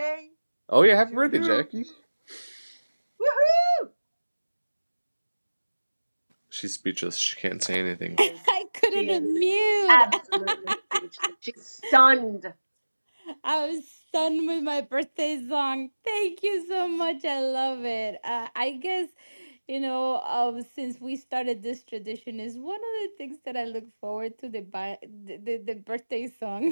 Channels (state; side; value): inverted; both; correlation -1.00